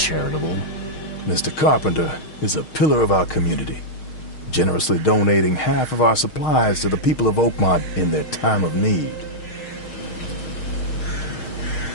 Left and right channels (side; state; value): right; late; 6.4 ms